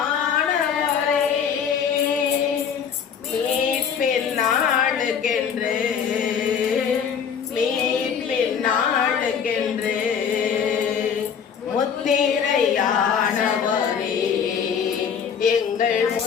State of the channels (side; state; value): right; quieter; 7.2 dB